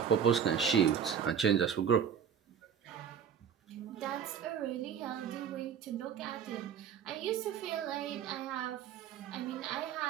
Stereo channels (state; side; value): quieter; left; 7.9 dB